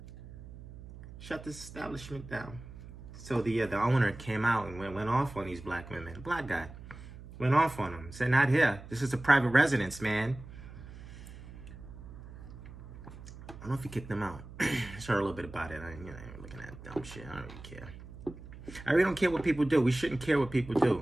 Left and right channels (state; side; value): noise; right; hum, 15 dB below the sound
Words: Shut this establishment down. So the owner came out and went off on these black women. The black guy went off on them. Said, not here. This is a private residence, man. I don't know if he kicked them out. I heard a little bit about it. I ain't looking at dumb shit. I don't really care. I really don't care what people do. We shouldn't care what people